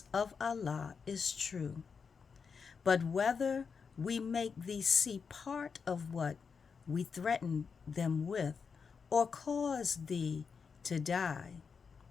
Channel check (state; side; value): quieter; right; 5.7 dB